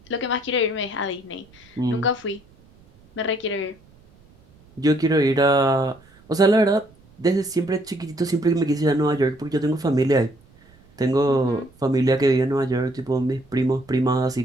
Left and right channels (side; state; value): right; noise; rumble, 28 dB below the sound